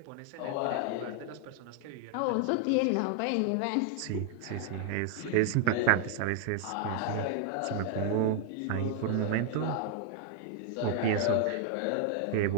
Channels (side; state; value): both; different; correlation 0.00